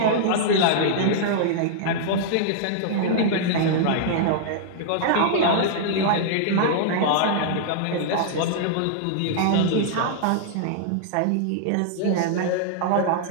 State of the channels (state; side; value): different; both; correlation -0.01